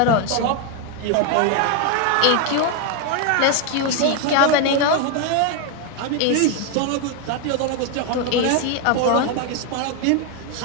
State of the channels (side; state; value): both; different; correlation 0.01